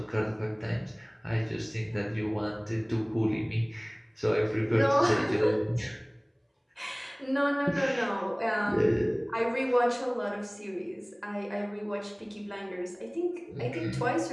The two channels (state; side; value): identical; both; correlation 1.00